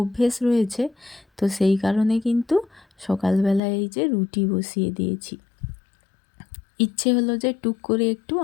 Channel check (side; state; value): right; drops out; at 3.6 s